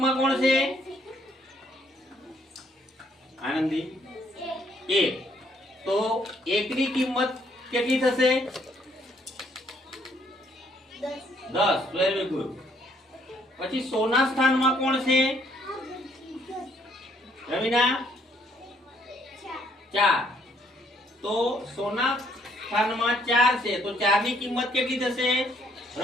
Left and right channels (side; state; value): both; normal; correlation 0.68